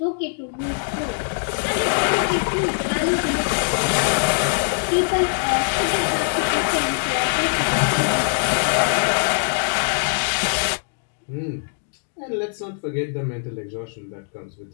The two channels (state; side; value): silent; right; digital silence